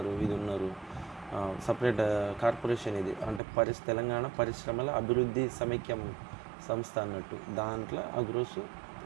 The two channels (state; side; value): drops out; left; at 3.4 s